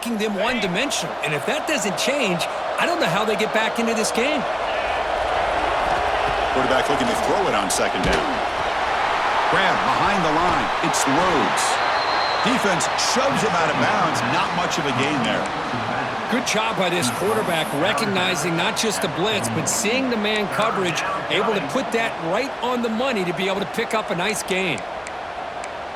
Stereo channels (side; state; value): both; identical; correlation 1.00